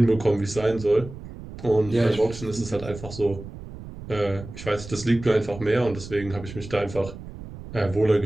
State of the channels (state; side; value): noise; right; rumble, 13 dB below the sound